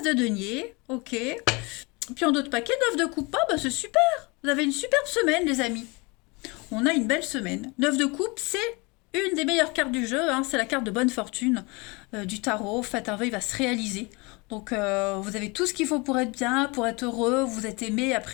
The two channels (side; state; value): right; quieter; 27.4 dB